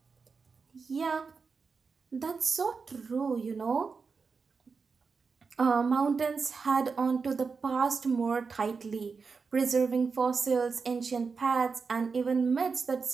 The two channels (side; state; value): left; quieter; 5.0 dB